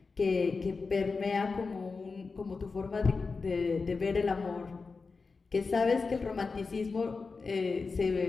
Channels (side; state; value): right; quieter; 4.4 dB